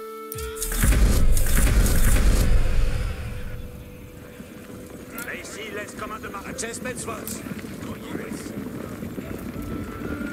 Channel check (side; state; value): both; identical; correlation 1.00